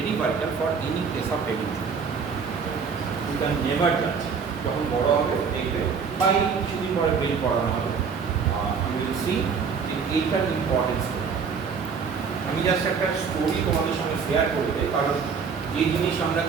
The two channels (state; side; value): quieter; left; 5.9 dB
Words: vital for any case of head injury. You can never judge. যখন বড় হবে দেখবে বা এই কিছুদিন পরে বেল পড়ানো হবে, you will see যে এইটার ইম্পর্টেন্স। আমি জাস্ট একটা স্টোরি তোমাদের সঙ্গে শেয়ার করে দেই, কারণ যে জিনিস আমরা